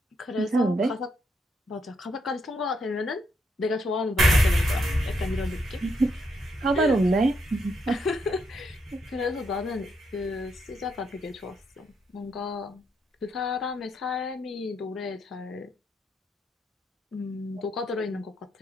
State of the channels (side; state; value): both; normal; correlation 0.78